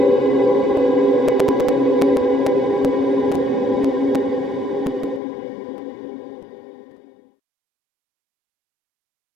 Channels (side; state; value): right; drops out; at 5.2 s